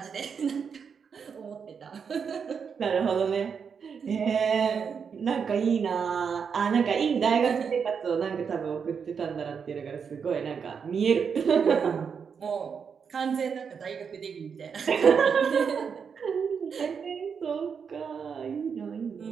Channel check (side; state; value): left; quieter; 6.4 dB